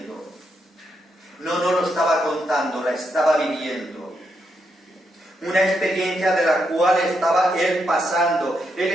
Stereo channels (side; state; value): both; normal; correlation 0.81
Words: No lo estaba contando, la estaba viviendo. Una experiencia de la cual estaba Él pasando. Él